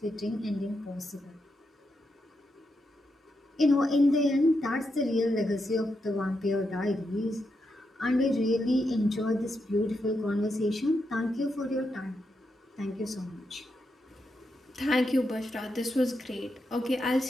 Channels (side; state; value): both; normal; correlation 0.84